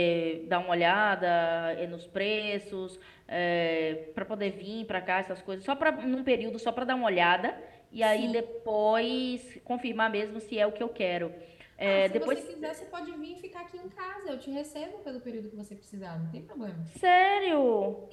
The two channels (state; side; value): identical; both; correlation 1.00